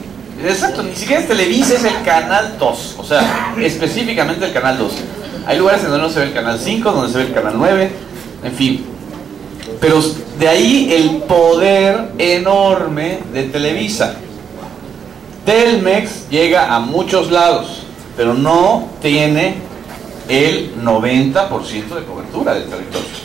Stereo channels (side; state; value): left; quieter; 7.2 dB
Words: Exacto, ni siquiera es Televisa, es el Canal 2, o sea, específicamente el Canal 2. Hay lugares en donde no se ve el Canal 5, donde se ve el Canal 9, en fin. Pero de ahí el poder enorme de Televisa. Telmex llega a muchos lados, pero no tiene el 90% de cobertura del territorio.